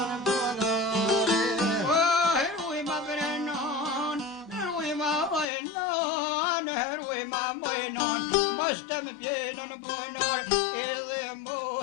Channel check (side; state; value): right; drops out; at 5.5 s